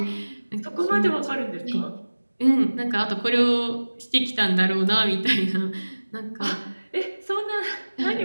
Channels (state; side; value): inverted; both; correlation -1.00